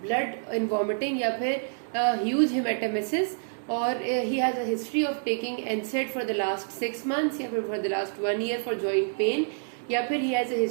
blood in vomiting या फिर huge hematemesis, और he has a history of taking NSAID for the last 6 months या फिर for the last 1 year for joint pain, या फिर he has a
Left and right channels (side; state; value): left; silent; 60 dB below the other